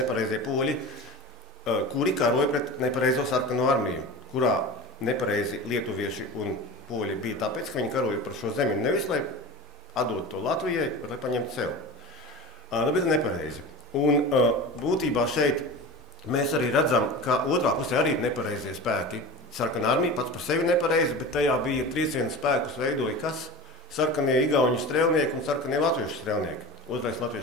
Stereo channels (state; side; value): normal; both; correlation 0.32